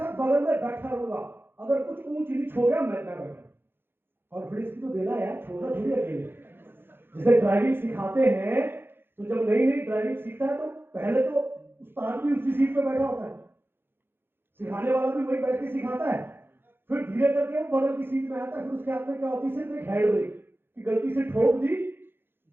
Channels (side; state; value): left; late; 0.10 ms